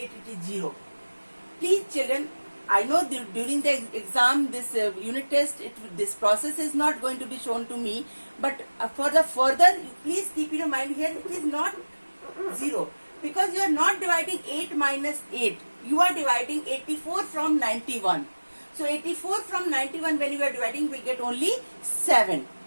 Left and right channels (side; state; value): both; inverted; correlation -1.00